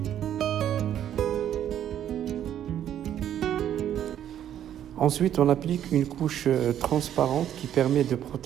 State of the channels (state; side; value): quieter; left; 10.6 dB